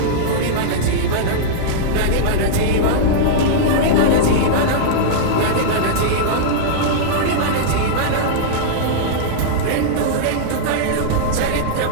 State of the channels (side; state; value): both; different; correlation -0.03